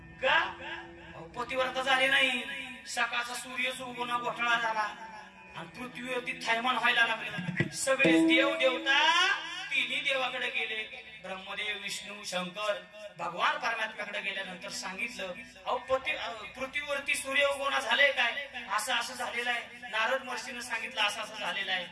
का? पतिव्रता झाली नाही. सकाळचा सूर्यच उगवणं घोटाळा झाला आणि पृथ्वीवरती थैमान व्हायला लागले. सगळे देव देवता तिन्ही देवाकडे गेले. ब्रह्मदेव, विष्णू, शंकर, भगवान परमात्म्याकडे गेल्यानंतर सांगितलं, अहो पृथ्वीवरती सूर्य उगवणं झालंय काय? असं असं झालेलं आहे. नारद महर्षीनं सांगितलं असं असं झालेलं आहे.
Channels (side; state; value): both; identical; correlation 1.00